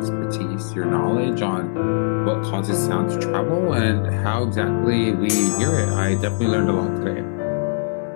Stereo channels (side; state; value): right; silent; digital silence